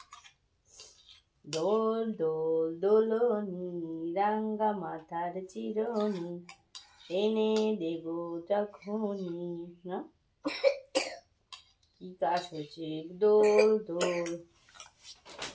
দোল দোল দোলনি রাঙ্গা মাথার চিরনি এনে দেব যখনই। না কি কাজ হয়েছে? দোল দোল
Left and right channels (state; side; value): identical; both; correlation 1.00